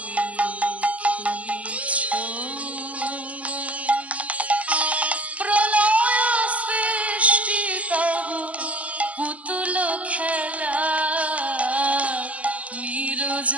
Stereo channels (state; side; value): late; left; 0.066 ms